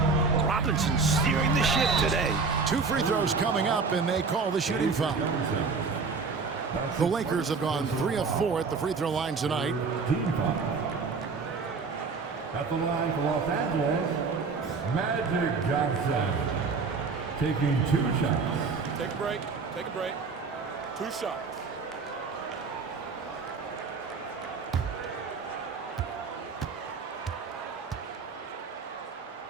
Robinson steering the ship today. 2 free throws coming up, and they call the shooting foul. The Lakers have gone 3 of 4 at the free throw line tonight. Team foul. At the line for Los Angeles, Magic Johnson. Taking 2 shots. Take a break. Take a break. 2 shots.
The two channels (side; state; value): left; quieter; 4.7 dB